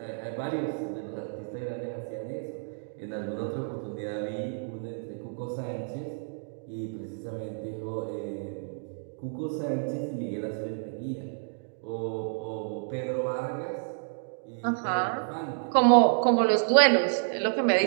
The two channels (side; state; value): left; silent; digital silence